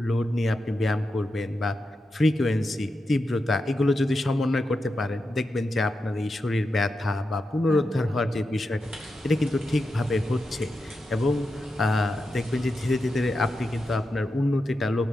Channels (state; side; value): normal; both; correlation 0.88